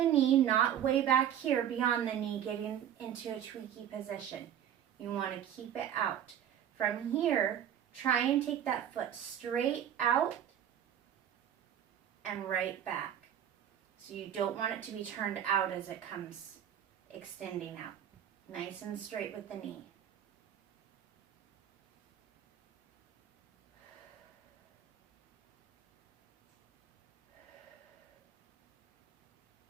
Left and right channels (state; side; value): quieter; left; 9.9 dB